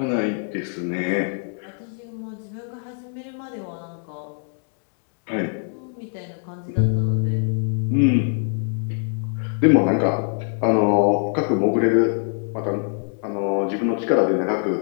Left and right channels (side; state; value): right; silent; 55 dB below the other